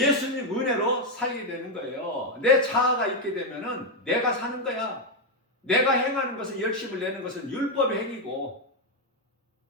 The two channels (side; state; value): both; normal; correlation 0.04